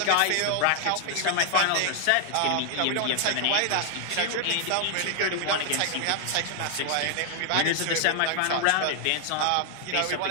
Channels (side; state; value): both; different; correlation 0.00